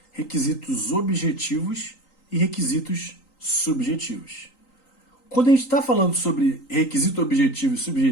requisitos objetivos e requisitos subjetivos. Quando a gente está falando sobre requisito objetivo e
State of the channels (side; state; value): right; late; 3.9 ms